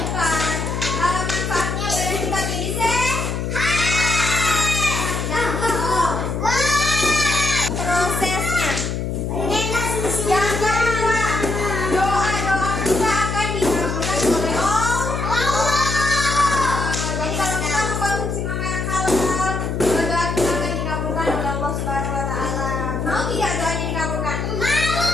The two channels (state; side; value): noise; left; hum, 2 dB below the sound